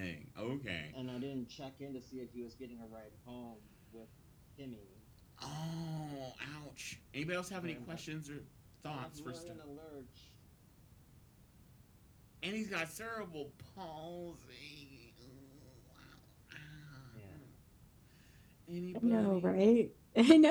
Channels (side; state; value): both; identical; correlation 1.00